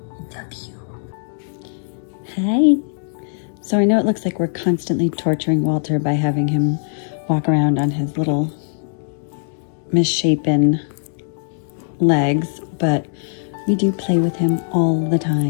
I love you. Hi. So I know it looks like we're constantly torturing Walter by having him walk around on his little misshapen legs, but we do play with him all the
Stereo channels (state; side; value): silent; right; digital silence